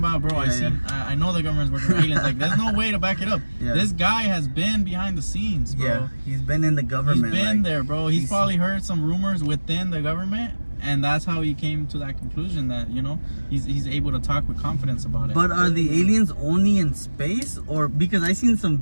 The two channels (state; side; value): inverted; both; correlation -1.00